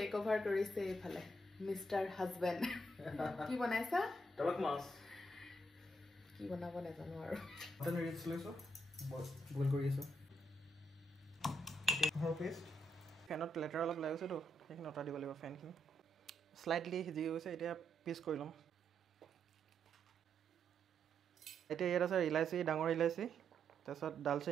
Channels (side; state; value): both; normal; correlation 0.78